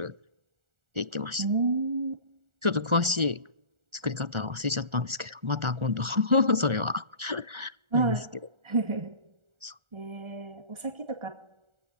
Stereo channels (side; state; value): left; late; 1.4 ms